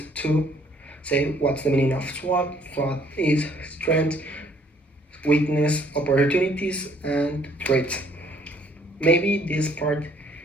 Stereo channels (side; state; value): both; normal; correlation 0.62